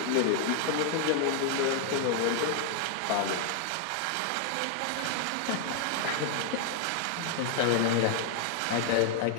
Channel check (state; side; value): different; both; correlation 0.00